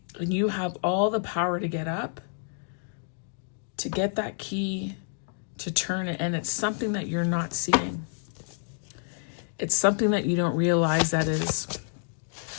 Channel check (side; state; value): right; silent; digital silence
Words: and you have all the power to get up, to get that key, to turn it. And it's something that you're not seeing. It's something that you don't realize that is